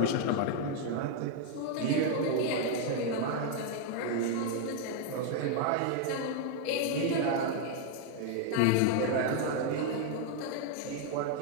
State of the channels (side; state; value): both; different; correlation 0.00